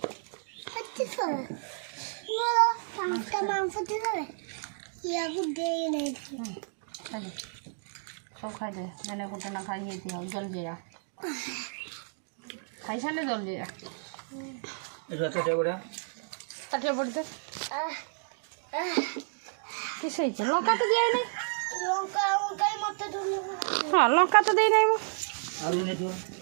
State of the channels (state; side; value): silent; left; digital silence